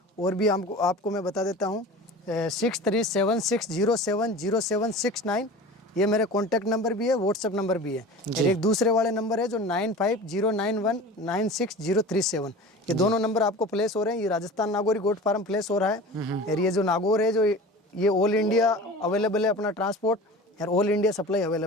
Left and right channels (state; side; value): normal; both; correlation 0.36